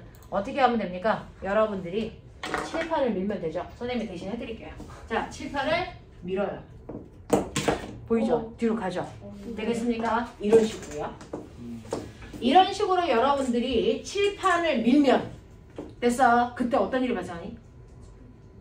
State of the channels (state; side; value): identical; both; correlation 1.00